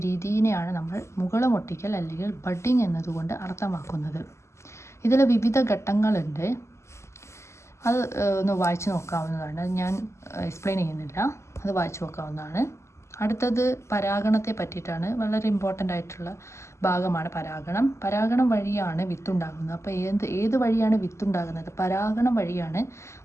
രീതിയെയാണ് നമ്മൾ മുകുളം ഒട്ടിക്കൽ അല്ലെങ്കിൽ ബഡ്ഡിംഗ് എന്നതുകൊണ്ട് അർത്ഥമാക്കുന്നത്. ഇതിൽ വിവിധ ഘട്ടങ്ങളുണ്ട്. അത് ഒന്ന് വായിച്ചു നോക്കാവുന്നതാണ്. ഞാൻ എക്സ്പ്ലെയിൻ ചെയ്യുന്നില്ല, അത് വായിച്ചു നോക്കാവുന്നതാണ്. അടുത്തത് പരാഗണത്തെ പറ്റിയിട്ടാണ്. വളരെ ഇമ്പോർട്ടൻ്റ് ആയിട്ടുള്ള ഭാഗമാണ് പരാഗണം. പരാഗണം വഴിയാണ് വിത്തുണ്ടാകുന്നത്. അപ്പോൾ ഏത് വഴിയാണ് വിത്തുണ്ടാകുന്നത്? പരാഗണം വഴിയാണ്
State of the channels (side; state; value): right; late; 0.13 ms